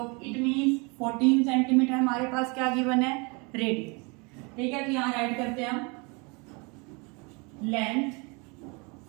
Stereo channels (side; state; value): left; quieter; 30.3 dB